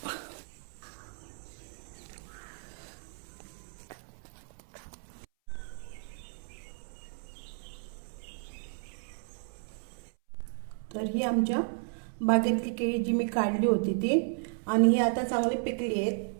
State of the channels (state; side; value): silent; left; 56 dB below the other